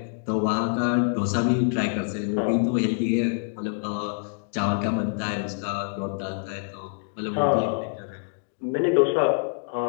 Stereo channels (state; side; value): silent; right; digital silence